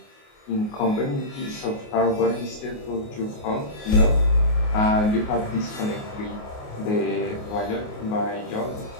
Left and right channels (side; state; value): right; late; 28 ms